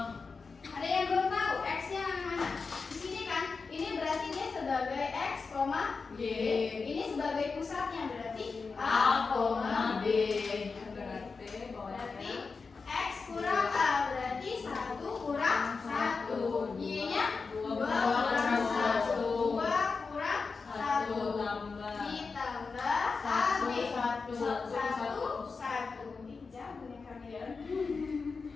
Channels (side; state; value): right; quieter; 4.6 dB